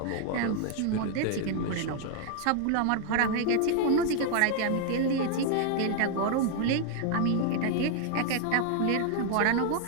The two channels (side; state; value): both; different; correlation 0.00